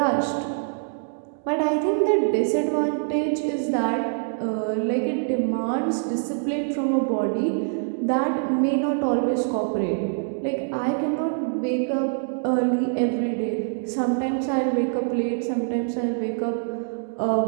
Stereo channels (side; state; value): left; silent; digital silence